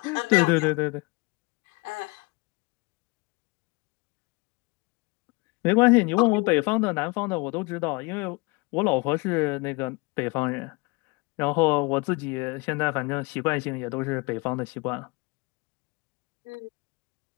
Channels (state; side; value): quieter; right; 26.7 dB